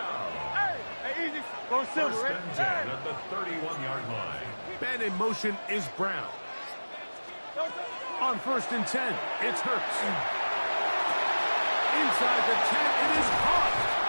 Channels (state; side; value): inverted; both; correlation -1.00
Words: Hey, easy. Go silver, First right? and 10 at the 31-yard line. Man in motion is Brown. On first and 10, it's Hurts. Inside the 10, it is caught.